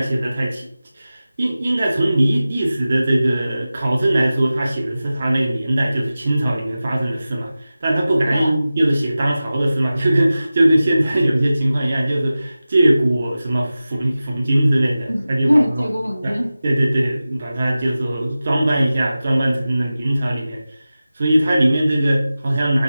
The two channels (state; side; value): inverted; both; correlation -0.96